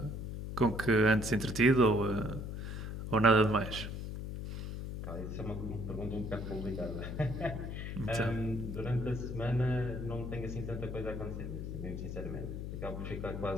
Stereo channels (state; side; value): noise; left; hum, 6 dB below the sound